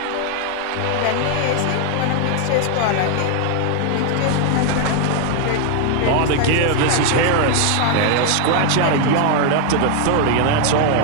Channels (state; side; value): different; both; correlation 0.00